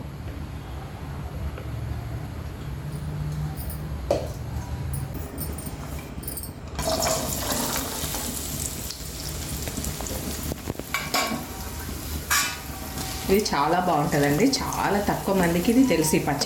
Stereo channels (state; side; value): identical; both; correlation 1.00